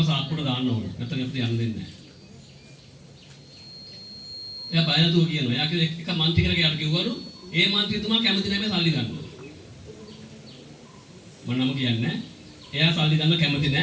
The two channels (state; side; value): identical; both; correlation 1.00